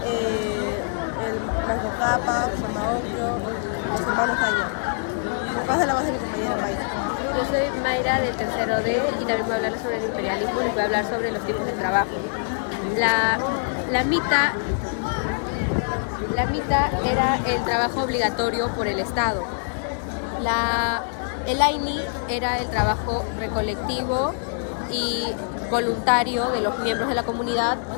el Manco Cápac, Samaoclio, los hermanos Caña. Pasa la voz de mi compañera Mayra. Yo soy Mayra del tercero D y también voy a hablar sobre el imperialismo y voy a hablar sobre los tipos de trabajo. La mitad era el trabajo obligatorio por el Estado. El AINI era el trabajo recolectivo y voluntario de los miembros de la comunidad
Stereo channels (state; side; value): silent; right; digital silence